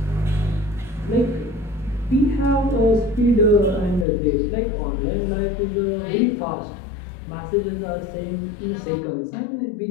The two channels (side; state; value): right; drops out; at 4.0 s